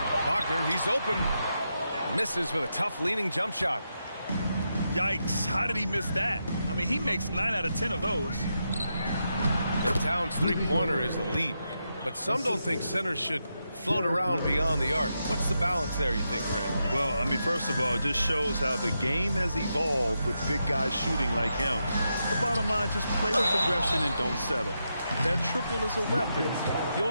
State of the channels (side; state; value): both; inverted; correlation -0.85